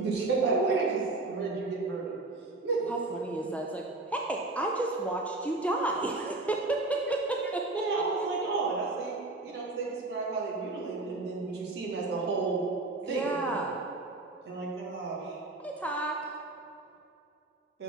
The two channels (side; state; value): left; quieter; 3.0 dB